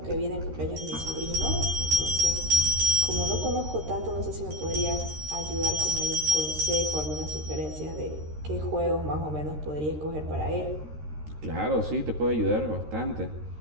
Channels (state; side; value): late; left; 13 ms